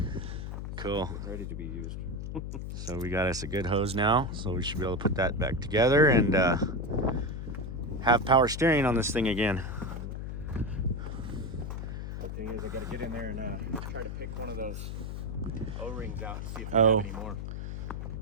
Cool. Ready to be used. So we got us a good hose now, so we should be able to put that back together and have power steering on this thing again. The thing is, I got to get in there and try to pick one of those O-rings out and see if I Oh. have any more.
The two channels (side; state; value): left; noise; hum, 6 dB below the sound